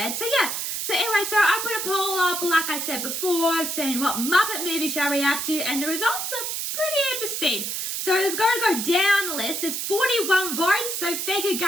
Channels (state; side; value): noise; right; hiss, 3 dB below the sound